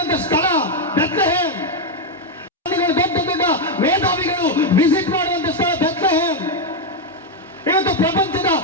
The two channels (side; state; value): both; normal; correlation 0.03